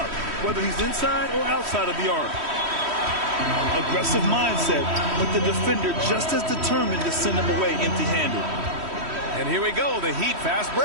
whether he's inside or outside of the arc. Aggressive mindset, but the defender just as determined to send him away empty-handed. And here we go, the Heat fast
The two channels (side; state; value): left; late; 3.1 ms